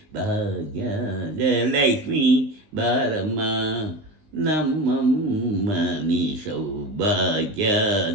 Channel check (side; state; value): left; late; 19 ms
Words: ಭಾಗ್ಯದ ಲಕ್ಷ್ಮೀ ಬಾರಮ್ಮ ನಮ್ಮಮ್ಮ ನೀ